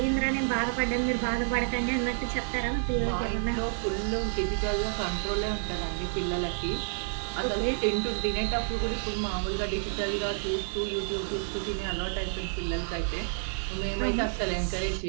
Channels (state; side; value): silent; left; 58 dB below the other